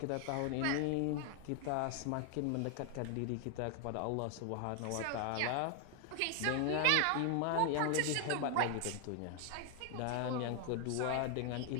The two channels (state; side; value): different; both; correlation 0.00